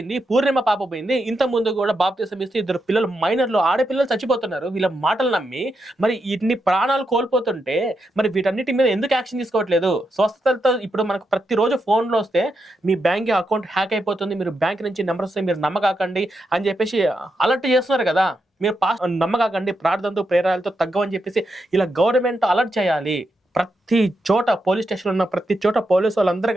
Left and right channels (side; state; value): both; normal; correlation 0.84